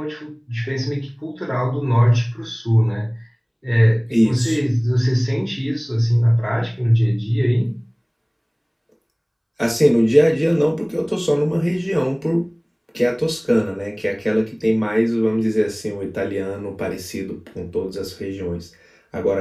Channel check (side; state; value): both; identical; correlation 1.00